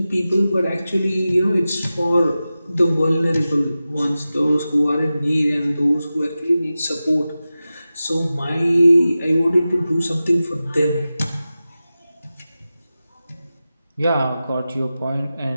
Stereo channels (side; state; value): both; inverted; correlation -0.94